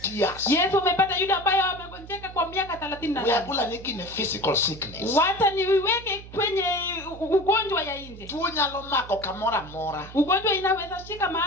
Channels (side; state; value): right; noise; hum, 16 dB below the sound